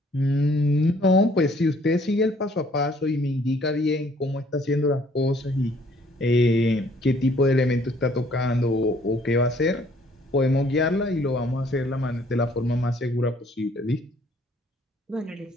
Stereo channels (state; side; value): normal; both; correlation 0.61